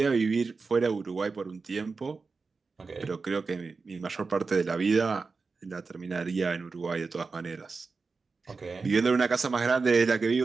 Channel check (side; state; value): left; quieter; 4.4 dB